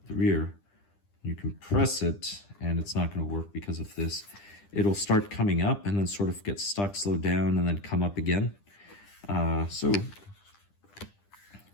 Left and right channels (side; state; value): right; late; 10 ms